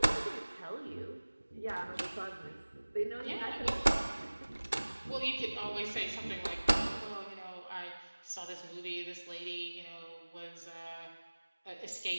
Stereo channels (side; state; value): both; inverted; correlation -1.00